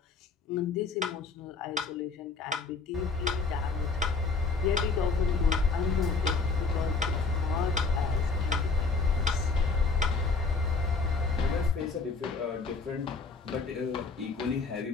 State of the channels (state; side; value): quieter; right; 4.4 dB